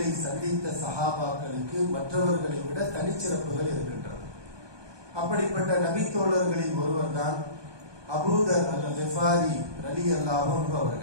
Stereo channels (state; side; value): late; left; 1.2 ms